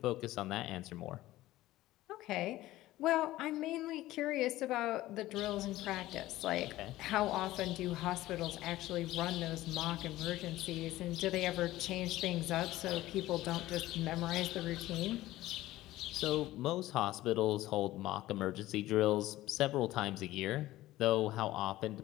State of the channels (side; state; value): right; quieter; 16.2 dB